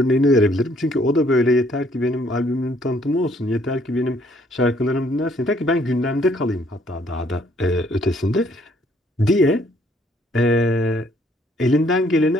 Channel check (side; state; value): both; normal; correlation 0.65